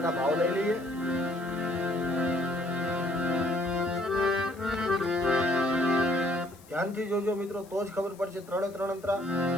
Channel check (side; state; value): left; noise; hiss, 25 dB below the sound